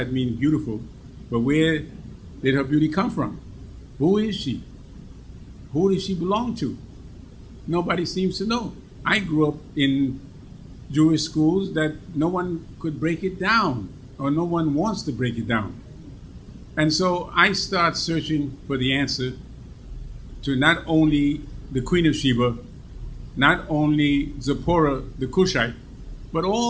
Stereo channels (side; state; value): both; identical; correlation 1.00